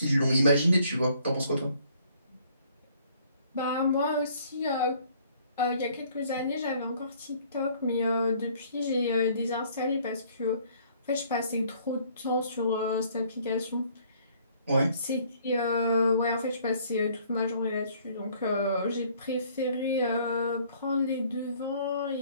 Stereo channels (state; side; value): inverted; both; correlation -0.61